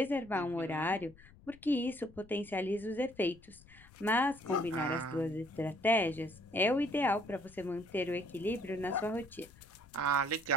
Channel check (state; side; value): noise; left; rumble, 24 dB below the sound